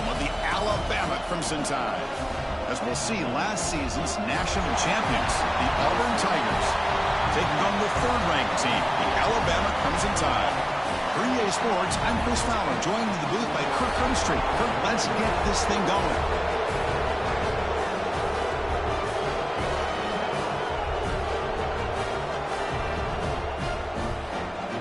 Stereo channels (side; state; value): both; identical; correlation 1.00